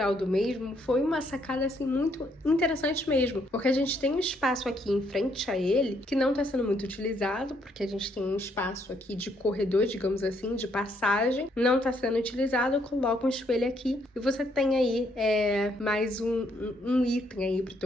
do mesmo foi uma sacada assim muito interessante mesmo, porque a gente tem um espaço aqui em frente a ele que não está sendo muito utilizado, porque a gente tem um espaço aqui de corredor, digamos assim, de passagem, não está sendo utilizado, coloca um espelho aqui e você tem aí mais um item aí pro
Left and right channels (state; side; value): normal; both; correlation 0.71